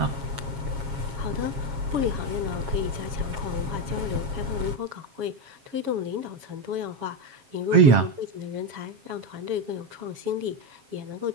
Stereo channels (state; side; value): late; left; 7.3 ms